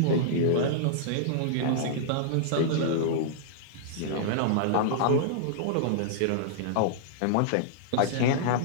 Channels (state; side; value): different; both; correlation -0.02